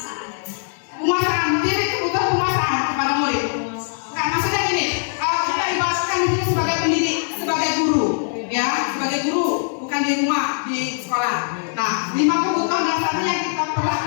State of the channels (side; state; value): right; silent; digital silence